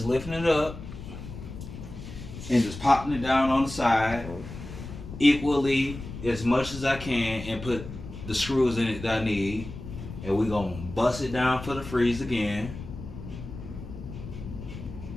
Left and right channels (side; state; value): left; noise; rumble, 11 dB below the sound